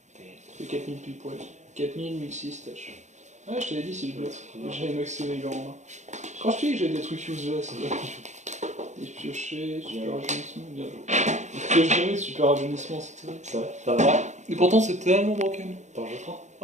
T'es. C'est 4000 pile poil. 4000, 1006 tâches. Ouais, je t'avais dit si je bluff. J'avais maxé les gens en main. Quand je te dis que j'ai des trucs useless, des piochés, super rajeunissement, bien joué. Pioche jamais, super rajeunissement, c'est terrible. Ça va? Ça va? Et pourtant c'est tellement broken. T'en joues 3?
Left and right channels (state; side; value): late; left; 0.34 ms